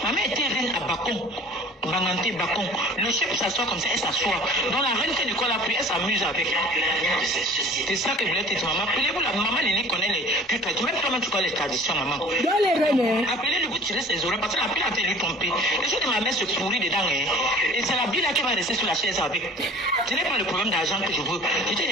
Ma mère était reine à Bacon. Banganté, Bacon. Le chef s'assoit comme ça, elle s'assoit. Donc la reine que Nicole a pris, elle s'amuse avec. C'est ça que je voulais te dire, maman. Appelez-vous la maman Lili connaît les. Même toi-même, tu connais les traditions, maman. Dans les reines. Appelez-le, vous tirez ses oreilles parce que la pile a été lui tromper. Les choses de ma mère se pourrit dedans. Et c'est la bille là qui va rester sur la chaise avec. Ce n'est pas le problème d'argent que je veux. Je t'ai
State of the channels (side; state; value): both; normal; correlation 0.46